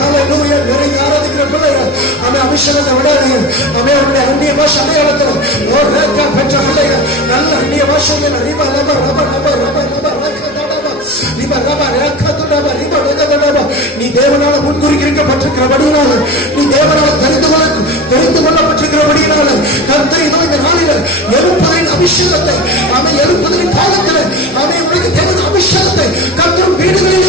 நிறைய ஆராதிக்கிற பிள்ளைகள் அபிஷேகத்தை விடாதீங்க. அந்நிய பாஷை அடையாளத்துல பெற்ற பிள்ளைகள் நல்ல அந்நிய பாஷைகள் நீ தேவனால முன்குறிக்கப்பட்டிருக்கிறபடியினால, நீ தேவனால தெரிந்து கொள்ளப்பட்டிருக்கிறபடியினால கர்த்தர் இந்த நாளில எழுப்புதலின் அபிஷேகத்தை எழுப்புதலின் காலத்தில் உனக்கு தேவன் அபிஷேகத்தை கர்த்தர்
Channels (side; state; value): both; normal; correlation 0.31